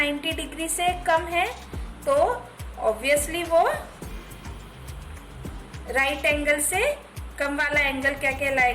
डिग्री से कम है तो ऑब्वियसली वो राइट एंगल से कम वाला एंगल क्या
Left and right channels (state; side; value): identical; both; correlation 1.00